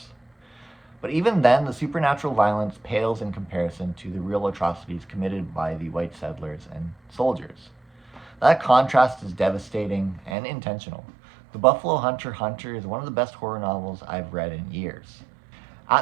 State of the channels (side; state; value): left; drops out; at 10.4 s